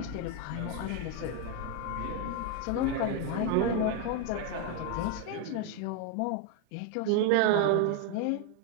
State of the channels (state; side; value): different; both; correlation 0.01